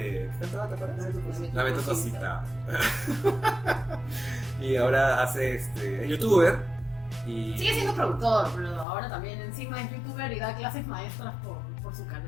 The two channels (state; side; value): drops out; right; at 8.8 s